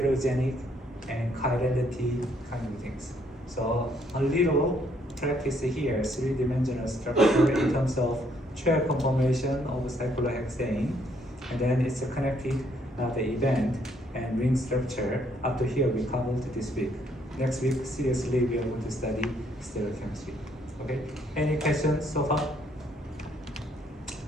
and chirality kind of things. So a little practice here, three-dimensional structure in terms of chair conformation of cyclohexane, and then it's connected the event and ring structure. Up to here we covered this week. Next week, seriously, we are going to study stereochemistry. Okay? Any questions so far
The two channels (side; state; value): both; normal; correlation 0.69